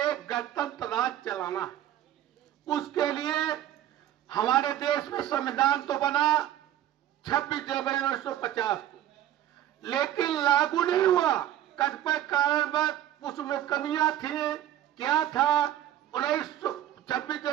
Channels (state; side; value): quieter; left; 12.1 dB